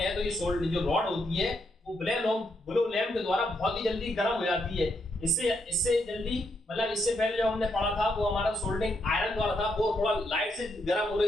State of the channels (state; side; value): normal; both; correlation 0.78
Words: हैं तो ये जो रॉड होती है वो बिलो लैंप के द्वारा बहुत ही जल्दी गर्म हो जाती है। इससे जल्दी, मतलब इससे पहले जो हमने पढ़ा था वो हमारा सोल्डरिंग आयरन द्वारा था, वो थोड़ा लाइट से गर्म हो